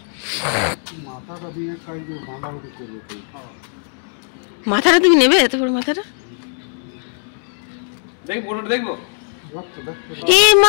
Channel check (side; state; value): right; silent; 61 dB below the other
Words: মাথাটা তুমি নেবে? এত বড় মাথাটা দেখবো? এ